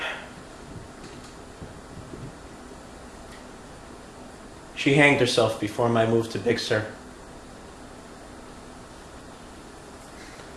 She hanged herself before my move to Big Sur.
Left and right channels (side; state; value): both; identical; correlation 1.00